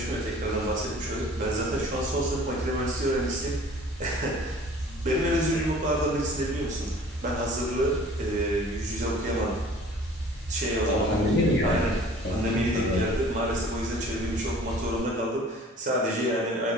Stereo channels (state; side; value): normal; both; correlation 0.49